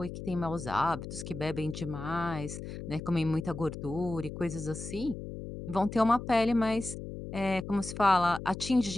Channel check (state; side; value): noise; left; hum, 9 dB below the sound